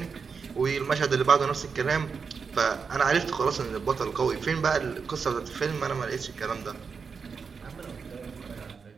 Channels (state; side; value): quieter; left; 5.6 dB